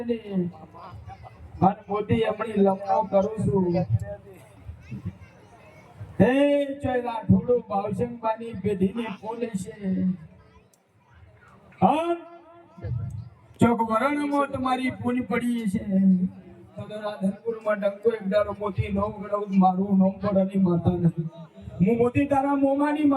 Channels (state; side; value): identical; both; correlation 1.00